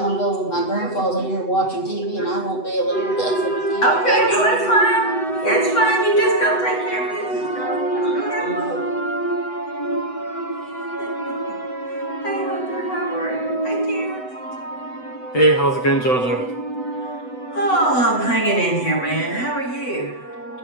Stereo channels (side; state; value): right; late; 8.0 ms